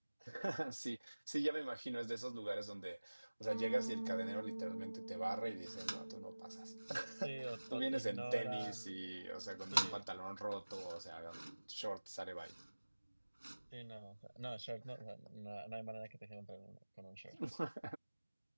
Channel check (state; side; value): inverted; both; correlation -1.00